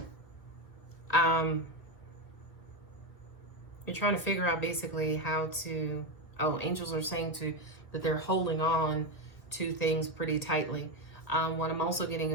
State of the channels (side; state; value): right; late; 1.8 ms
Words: you're trying to figure out basically how to. Oh, angels are saying that they're holding on to things pretty tightly. What I'm also getting